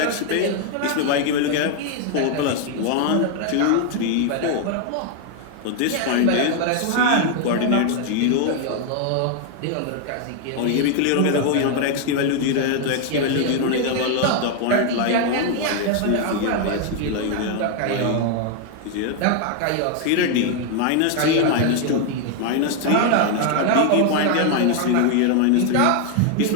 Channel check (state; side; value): different; both; correlation 0.01